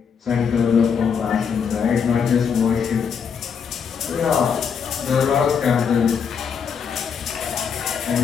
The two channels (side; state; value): right; quieter; 6.7 dB